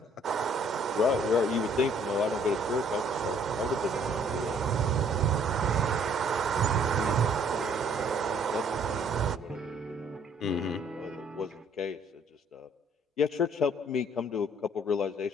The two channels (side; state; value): both; normal; correlation 0.61